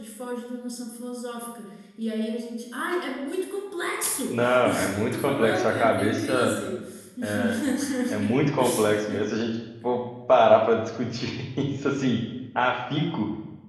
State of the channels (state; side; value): identical; both; correlation 1.00